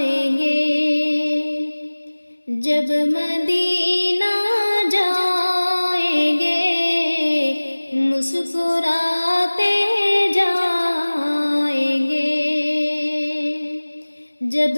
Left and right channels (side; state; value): both; inverted; correlation -1.00